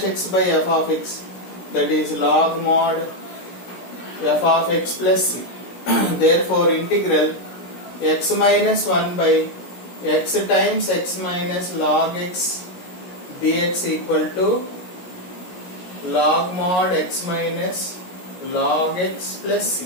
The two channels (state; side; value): late; right; 17 ms